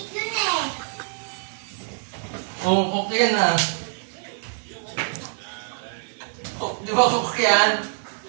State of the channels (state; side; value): silent; left; 62 dB below the other